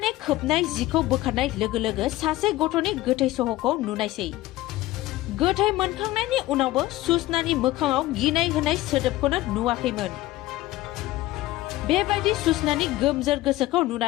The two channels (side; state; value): right; quieter; 17.1 dB